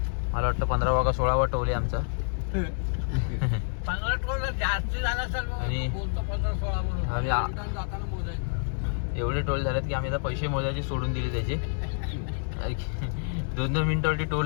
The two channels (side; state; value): right; silent; digital silence